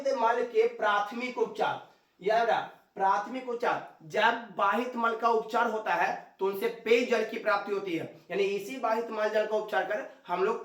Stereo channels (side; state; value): both; identical; correlation 1.00